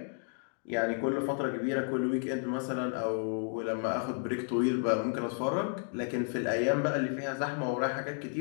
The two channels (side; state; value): right; silent; 56 dB below the other